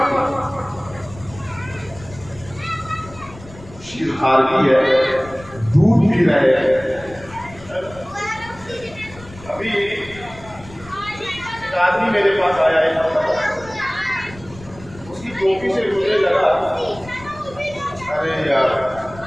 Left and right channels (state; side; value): noise; left; rumble, 19 dB below the sound